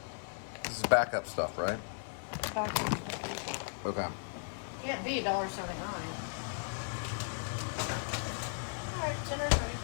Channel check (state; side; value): silent; right; 54 dB below the other